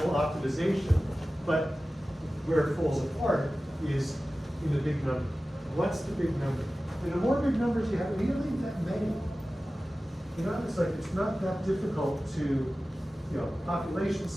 optimization, but where it falls apart is in the big number. What's the big number? And the more big numbers you have, we don't need that many. You know, it's like, it's not that difficult to, population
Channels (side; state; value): both; normal; correlation 0.96